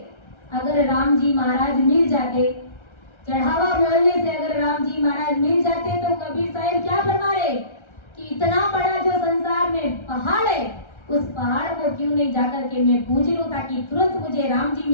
अगर राम जी महाराज मिल जाते, चढ़ावा बोलने से अगर राम जी महाराज मिल जाते, तो कबीर साहब क्या फरमा रहे कि इतना बड़ा जो संसार में पहाड़ है, उस पहाड़ को क्यों नहीं जाकर के मैं पूज लूं ताकि तुरंत मुझे राम जी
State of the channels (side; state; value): right; late; 1.3 ms